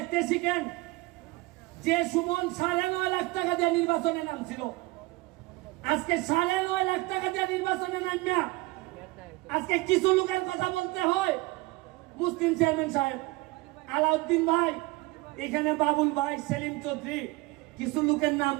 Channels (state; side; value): quieter; left; 22.1 dB